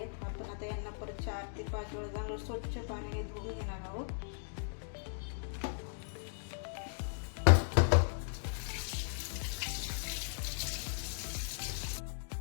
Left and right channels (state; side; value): silent; right; digital silence